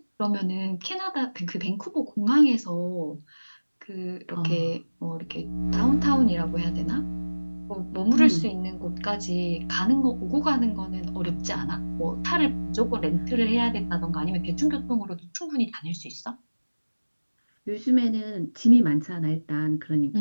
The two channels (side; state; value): both; inverted; correlation -1.00